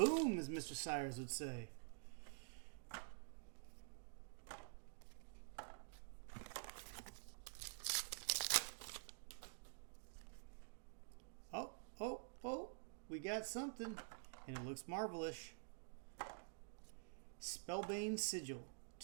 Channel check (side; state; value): left; silent; digital silence